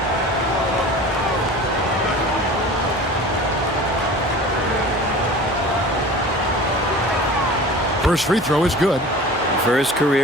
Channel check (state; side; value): normal; both; correlation 0.39